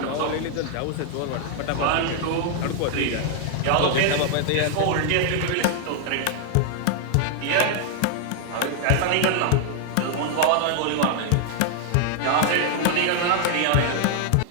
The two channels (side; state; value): both; different; correlation 0.00